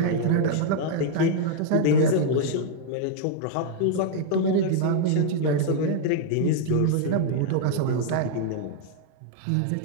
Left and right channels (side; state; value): both; different; correlation 0.00